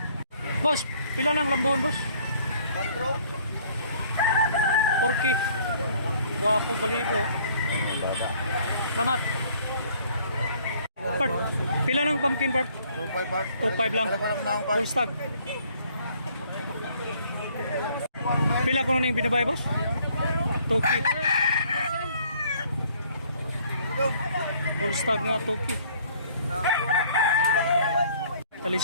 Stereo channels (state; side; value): inverted; both; correlation -0.60